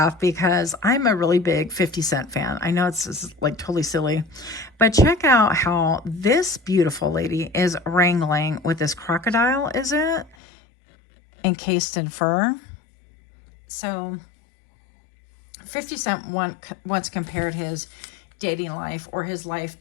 because I'm a really big 50 Cent fan. I know it's like totally silly, but check out how this beautiful lady is wrangling with this crocodile, is it? Encased in fur. So 50 Cent once compared his dating life, or his life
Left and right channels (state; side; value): drops out; right; at 10.4 s